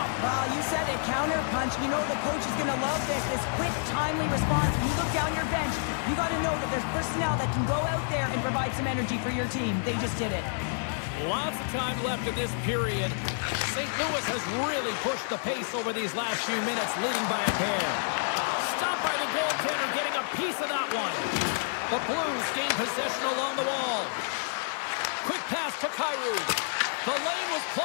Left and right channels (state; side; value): silent; right; digital silence